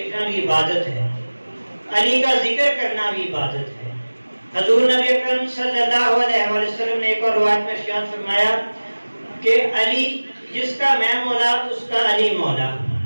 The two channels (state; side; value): inverted; both; correlation -1.00